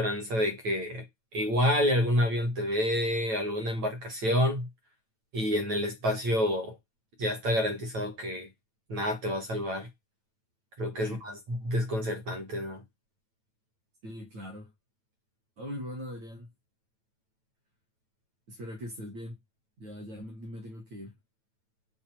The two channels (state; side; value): late; left; 9.1 ms